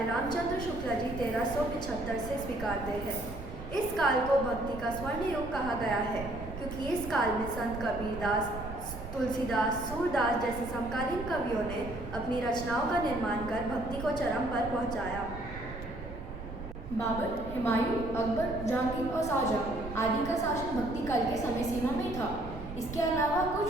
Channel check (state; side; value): noise; right; rumble, 10 dB below the sound